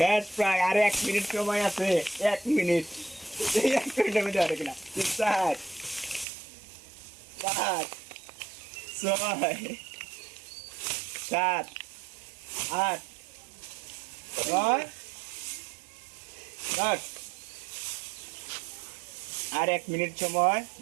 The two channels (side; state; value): left; drops out; at 6.2 s